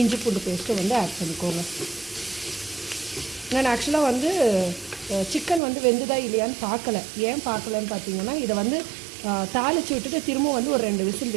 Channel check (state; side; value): drops out; left; at 5.6 s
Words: இஞ்சி பூண்டு பேஸ்ட்டும் வந்து ஆட் பண்ணிக்கோங்க. நான் ஆக்சுவலாக வந்து சிக்கன் வந்து வெந்துதா இல்லையான்னு பார்க்கல. ஏன் பார்க்கலன்னு பார்த்தீங்கன்னா இதை வந்து தாளித்து விட்டுட்டு திரும்ப வந்து ஒரு 2 விசில்